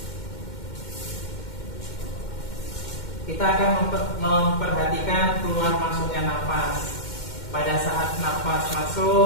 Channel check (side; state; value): right; late; 2.1 ms